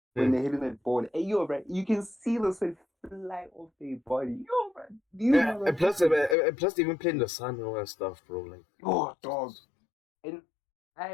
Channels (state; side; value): drops out; right; at 6.4 s